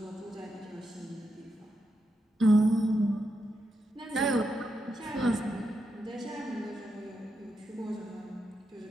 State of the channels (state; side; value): normal; both; correlation 0.85